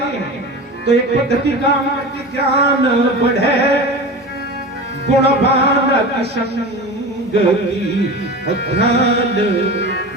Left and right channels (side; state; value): both; normal; correlation 0.30